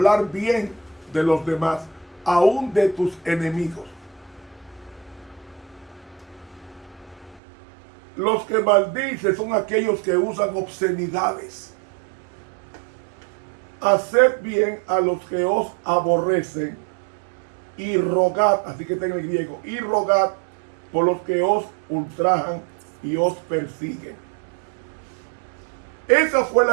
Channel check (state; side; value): drops out; left; at 7.4 s